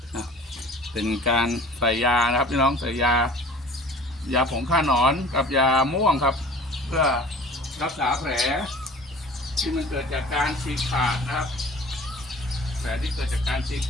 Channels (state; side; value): normal; both; correlation 0.45